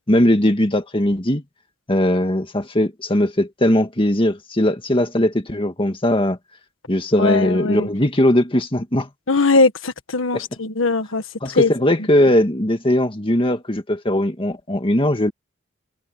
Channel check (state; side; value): normal; both; correlation 0.56